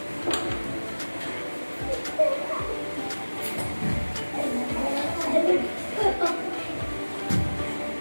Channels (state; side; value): inverted; both; correlation -1.00